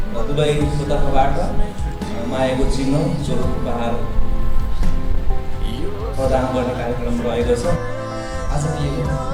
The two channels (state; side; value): identical; both; correlation 1.00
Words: दुलैको तर्फबाट मायाको चिन्ह स्वरूप उपहार प्रदान गर्ने कार्यक्रम रहेको छ। आजको यो